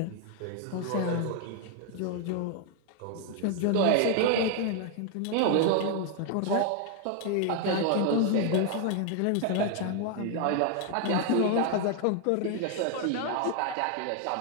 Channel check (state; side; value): different; both; correlation 0.00